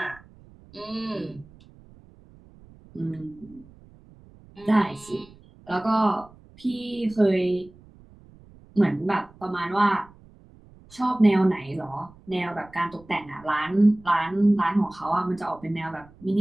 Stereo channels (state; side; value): noise; right; rumble, 24 dB below the sound